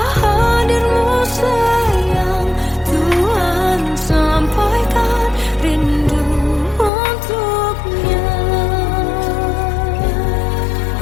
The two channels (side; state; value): right; drops out; at 6.9 s